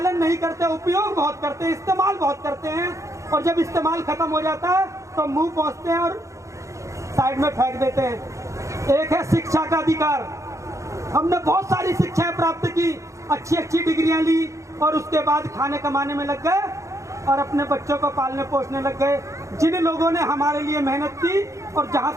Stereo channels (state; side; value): late; left; 0.15 ms